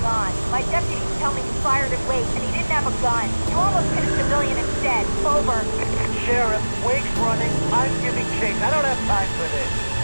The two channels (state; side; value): inverted; both; correlation -1.00